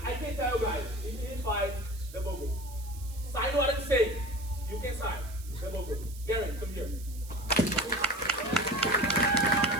can tell you guys, if he fights, double gold. Sign what I'm saying. You can sign. Double gold. Gary, come here.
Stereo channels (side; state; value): right; noise; hiss, 18 dB below the sound